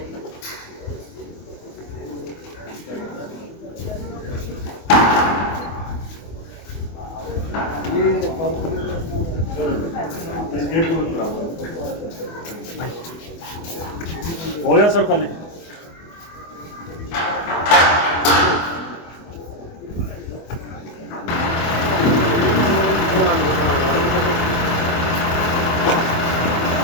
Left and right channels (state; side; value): late; right; 24 ms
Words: हो गया सर खाली।